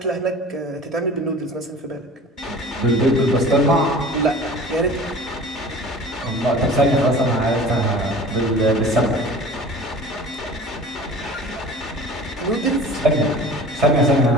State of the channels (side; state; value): both; normal; correlation 0.42